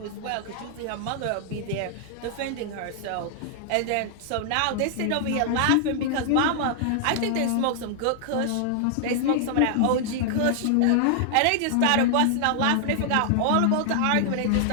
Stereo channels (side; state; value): both; different; correlation -0.01